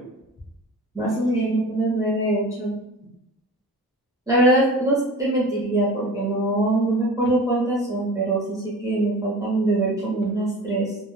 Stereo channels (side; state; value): both; normal; correlation 0.37